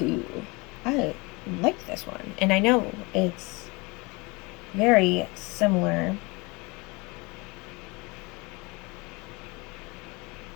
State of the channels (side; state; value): right; quieter; 26.4 dB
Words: I like this one. And I know it's very similar.